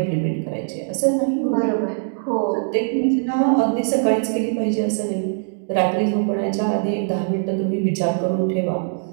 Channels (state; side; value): silent; left; digital silence